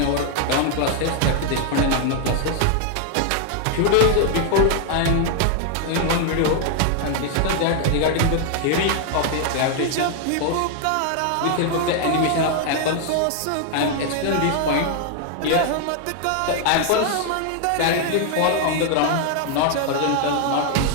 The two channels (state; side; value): different; both; correlation 0.00